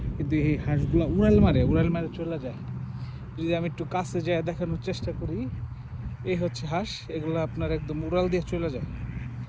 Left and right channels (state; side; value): identical; both; correlation 1.00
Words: কিন্তু এই হাঁসগুলো উড়াল মারে চলে যায়। যদি আমি একটু কাছে যায় দেখানোর চেষ্টা করি, এই হচ্ছে হাঁস, এগুলো আপনার একদম উড়াল দিয়ে চলে যায়,